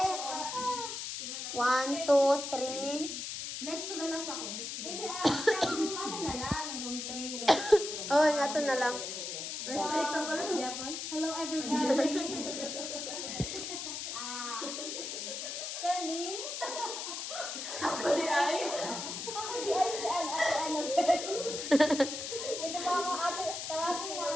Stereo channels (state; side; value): noise; left; hiss, 5 dB below the sound